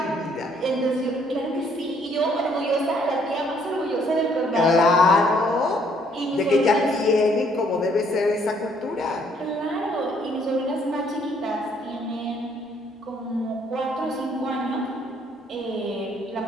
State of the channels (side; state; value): both; normal; correlation 0.65